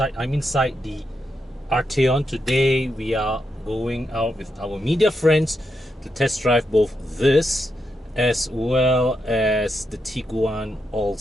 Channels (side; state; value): both; normal; correlation 0.84